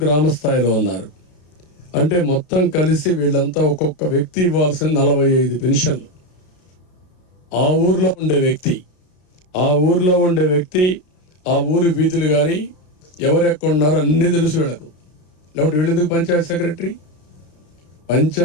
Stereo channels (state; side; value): late; right; 33 ms